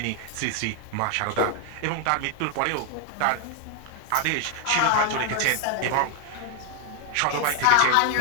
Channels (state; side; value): different; both; correlation 0.00